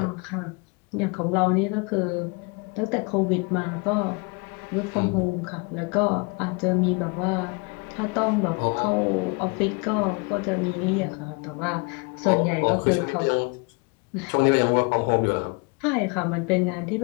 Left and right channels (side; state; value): right; quieter; 30.7 dB